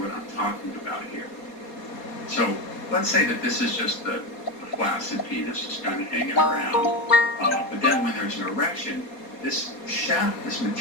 I'm talking about here. So let's say that this is just the flaccid penis just kind of hanging around. But then when there's an erection, this shaft, this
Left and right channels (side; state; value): right; late; 4.2 ms